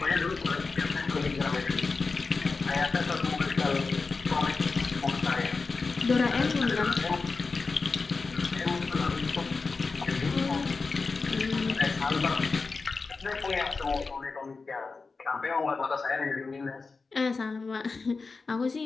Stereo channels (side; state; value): right; quieter; 4.3 dB